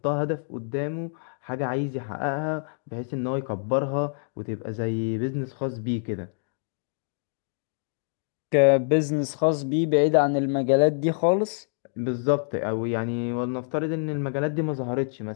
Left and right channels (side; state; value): right; silent; digital silence